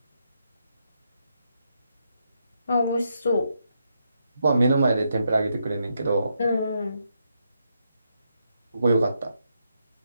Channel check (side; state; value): both; inverted; correlation -0.80